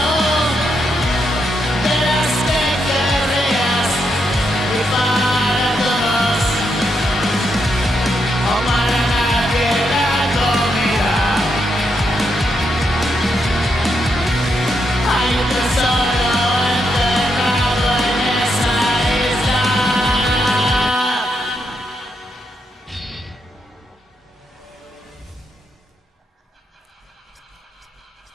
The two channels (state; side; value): normal; both; correlation 0.81